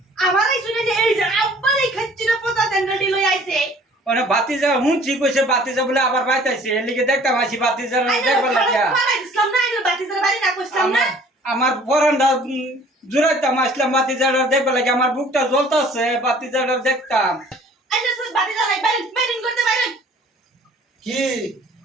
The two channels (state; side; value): normal; both; correlation 0.53